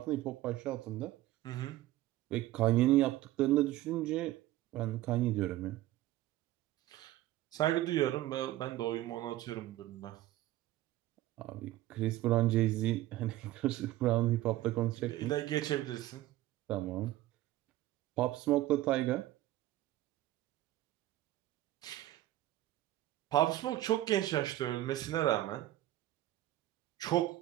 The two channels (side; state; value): left; quieter; 15.5 dB